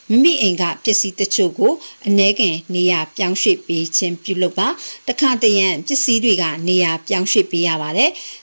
မိမိအိမ်ကပစ္စည်းတချို့ကိုအ ਨੇ ခင်နေရာပြောင်းရွှေ့ပေးခြင်းပြုလုပ်ပါတခါတရံပစ္စည်းတွေကနေရာပြောင်းရွှေ့ပေးရပါတယ်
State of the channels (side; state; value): both; inverted; correlation -1.00